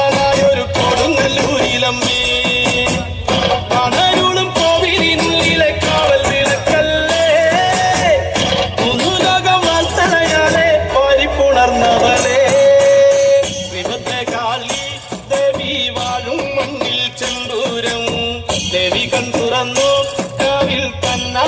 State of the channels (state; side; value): identical; both; correlation 1.00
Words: കൊടുങ്ങല്ലൂരിലമ്മേ കണരുളും കോവിലിനുള്ളിലെ കാവൽ വിളക്കല്ലേ മുന്നുലോകം വാർത്തനയാലെ പരിപ്പുണർന്നവളെ കാളി ദേവി വാഴും മണ്ണിൽ ചെമ്പൂരം ദേവി കൺതുറന്നു കാവിൽ